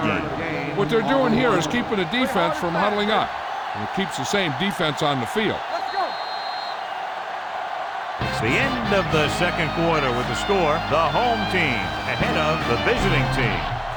gain. What they're doing here is keeping the defense from huddling up. And it keeps the same defense on the field. Let's go! It's the end of the second quarter with the score. The home team ahead of the visiting team,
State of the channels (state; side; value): identical; both; correlation 1.00